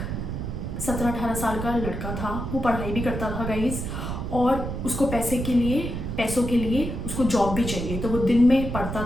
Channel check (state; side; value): noise; right; rumble, 5 dB below the sound